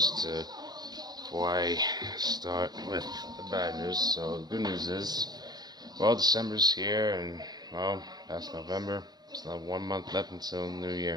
before I start with the bad news. So, the good news is, well, December's here, and well, past November. It's not 1 month left until New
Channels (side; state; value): left; late; 0.20 ms